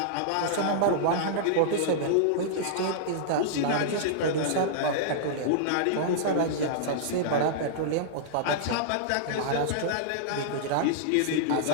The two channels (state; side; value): different; both; correlation -0.02